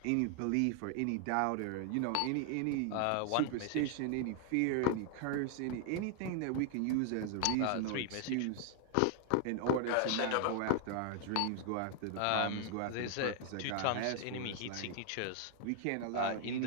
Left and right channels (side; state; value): both; different; correlation 0.00